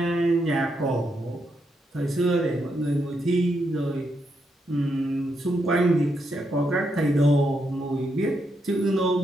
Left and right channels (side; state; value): both; normal; correlation 0.80